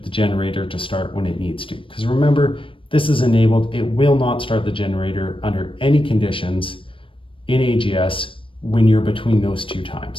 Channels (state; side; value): late; right; 0.25 ms